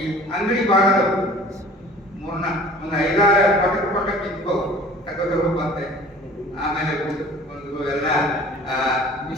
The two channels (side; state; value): both; normal; correlation 0.47